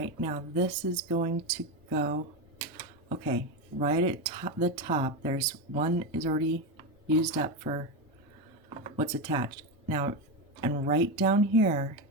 now this is going to go, okay, right at the top, there's one is already used up for what's attached. Now, and right down here,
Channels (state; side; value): normal; both; correlation 0.13